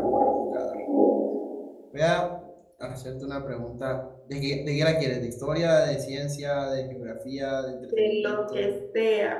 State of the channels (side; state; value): both; identical; correlation 1.00